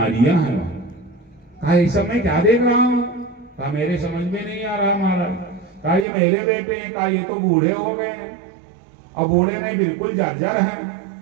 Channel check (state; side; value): drops out; left; at 6.1 s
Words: हैं कहा इस सब मैं क्या देख रहा हूँ? कहा मेरे समझ में नहीं आ रहा महाराज। कहा ये मेरे बेटे हैं। कहा ये तो बूढ़े हो गए हैं और बूढ़े नहीं बिल्कुल जर्जर हैं,